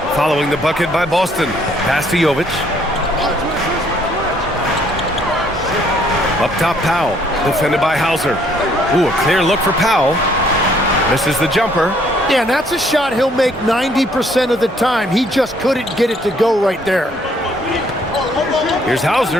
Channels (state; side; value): normal; both; correlation 0.65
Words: following the bucket by Boston. Pass to Jovic. Up top, Powell, defended by Hauser. Ooh, a clear look for Powell. Misses the jumper. Yeah, and that's a shot he'll make 90% of the time. He just couldn't get it to go right there. Here's